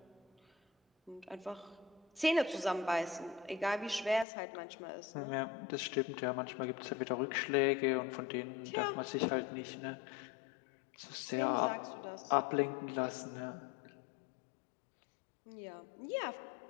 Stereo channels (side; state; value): right; drops out; at 4.2 s